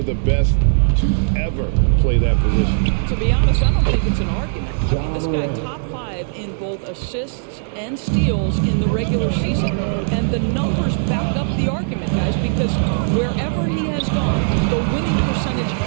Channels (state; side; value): silent; left; 67 dB below the other